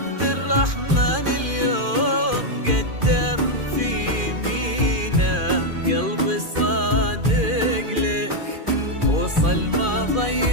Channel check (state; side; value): late; left; 2.4 ms